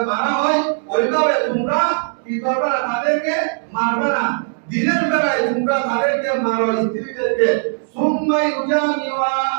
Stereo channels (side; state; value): left; silent; 67 dB below the other